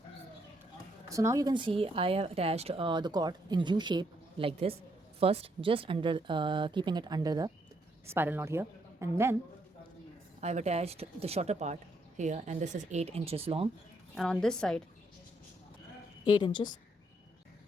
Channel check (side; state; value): both; normal; correlation 0.74